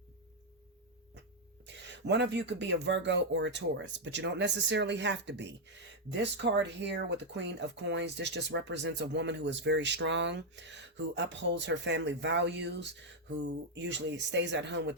One of you could be a Virgo or a Taurus, but you don't necessarily have to be. This card here with the Queen of Coins, this just represents a woman who is very strong, who upholds her family values, who usually stays at home with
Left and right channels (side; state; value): both; normal; correlation 0.00